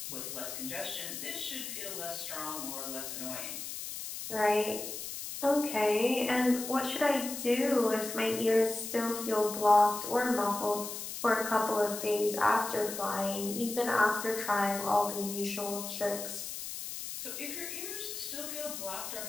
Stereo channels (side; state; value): left; noise; hiss, 7 dB below the sound